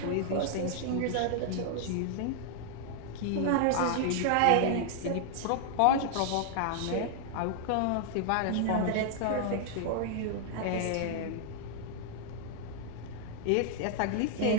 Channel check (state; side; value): different; both; correlation -0.01